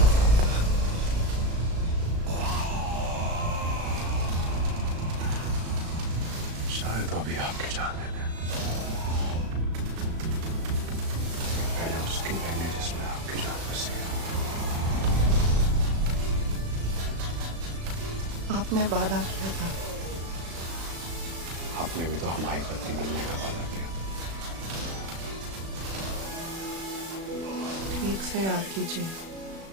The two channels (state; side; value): late; left; 36 ms